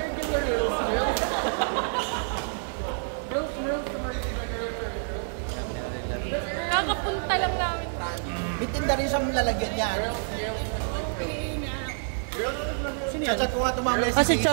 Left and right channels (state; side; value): silent; left; digital silence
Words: Kakapunta lang namin. May tinda rin siyang lalagyan niya. Chat ko nga tumamay Ah, si